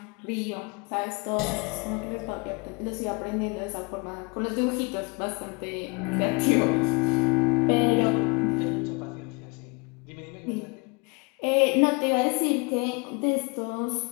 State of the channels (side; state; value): right; quieter; 30.5 dB